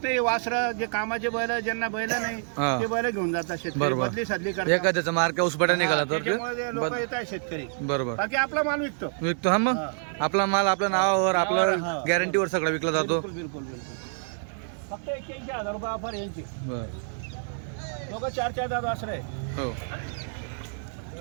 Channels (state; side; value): silent; left; 60 dB below the other